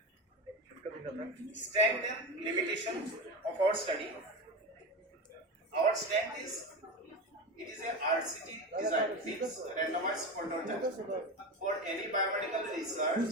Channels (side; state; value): both; normal; correlation 0.22